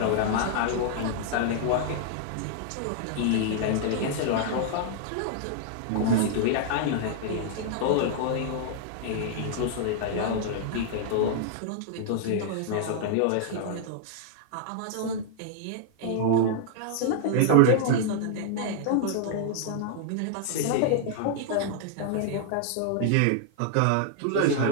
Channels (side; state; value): both; different; correlation -0.01